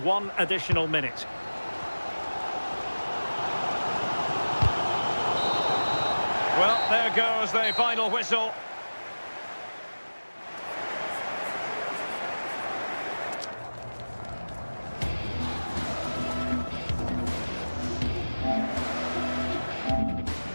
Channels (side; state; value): both; inverted; correlation -1.00